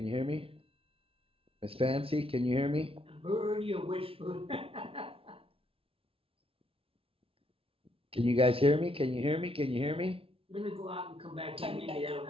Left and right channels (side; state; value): left; late; 0.27 ms